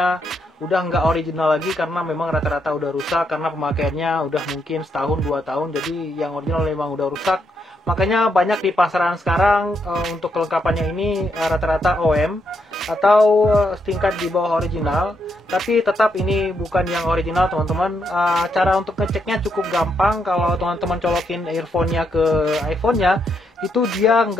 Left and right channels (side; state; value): both; normal; correlation 0.78